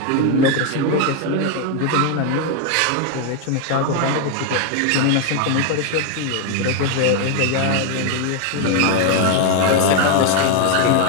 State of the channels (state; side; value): different; both; correlation 0.01